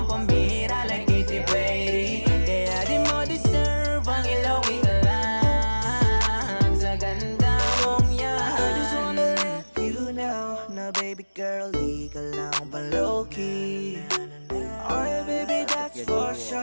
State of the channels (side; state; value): both; inverted; correlation -1.00